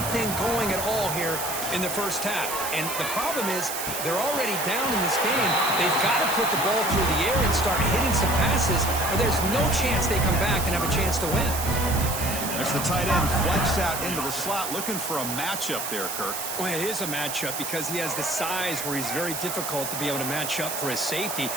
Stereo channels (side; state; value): right; noise; hiss, 5 dB below the sound